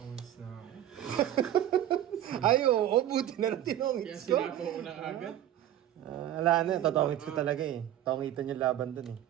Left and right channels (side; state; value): left; quieter; 12.1 dB